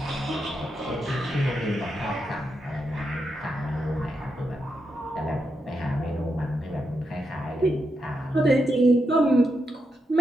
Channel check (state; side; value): normal; both; correlation 0.84